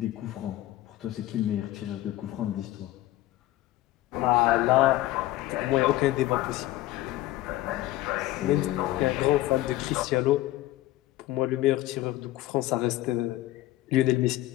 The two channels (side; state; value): right; quieter; 15.9 dB